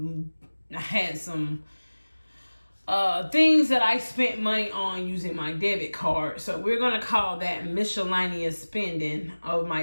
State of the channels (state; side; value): inverted; both; correlation -1.00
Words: things that I spent money on using my debit card. So we're gonna call that miscellaneous spending of